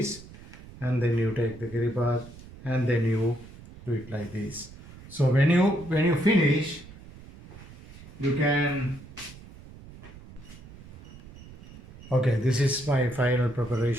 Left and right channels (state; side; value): noise; right; rumble, 18 dB below the sound